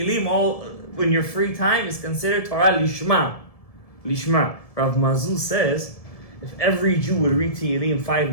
all when your free time is considered Torah lishma. Lishma. Rav Mazul says, if every Jew would read Tehillim 5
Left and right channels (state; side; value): late; right; 1.7 ms